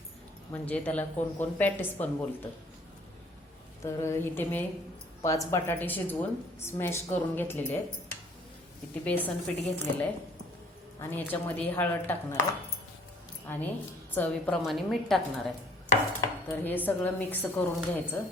म्हणजे त्याला कोण कोण पॅटीस पण बोलतं. तर इथे मी 5 बटाटे शिजवून स्मॅश करून घेतलेले आहेत. इथे बेसन पीठ घेतलेलं आहे आणि याच्यामध्ये हळद टाकणार आहे आणि चवीप्रमाणे मीठ टाकणार आहे. तर हे सगळं मिक्स करून घ्यायचं.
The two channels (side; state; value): both; normal; correlation 0.56